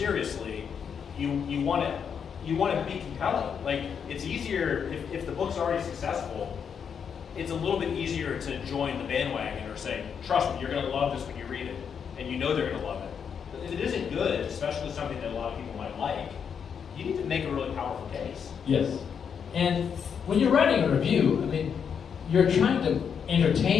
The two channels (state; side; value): quieter; right; 7.1 dB